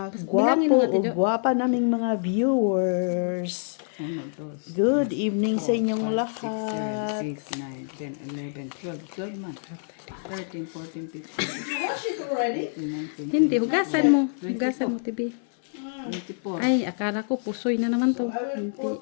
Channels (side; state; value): right; silent; 61 dB below the other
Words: gwapo o gwapa naming mga viewers. Good evening sa inyong lahat. 6, 9, 10, 11, 12 months. 13, 14, 15, 16, 17, Hindi, hugasan mo. Hugasan mo, Tibi. 24. Ay, akala ko pusoy na naman to.